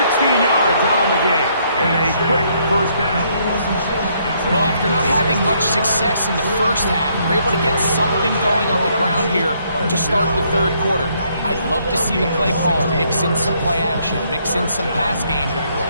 yards on the game. And a quick 1st down. Well, after not having much success in the first half, we're able to get something going on the ground here to start the 3rd quarter. I'd love to see the play caller mix in some play action, mix in some pass game.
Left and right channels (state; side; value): inverted; both; correlation -0.70